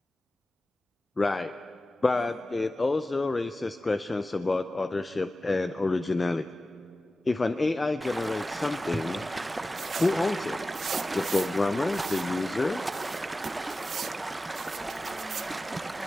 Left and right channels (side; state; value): both; normal; correlation 0.95